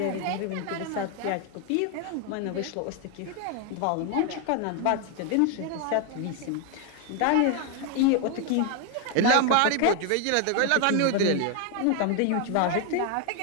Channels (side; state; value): both; different; correlation 0.01